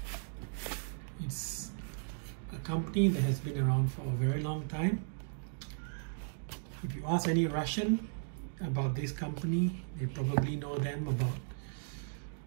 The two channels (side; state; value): left; silent; digital silence